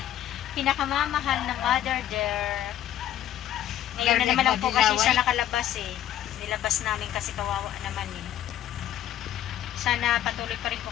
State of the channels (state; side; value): quieter; right; 11.8 dB